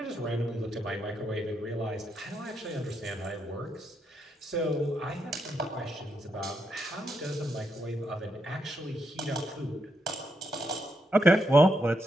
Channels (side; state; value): both; normal; correlation 0.80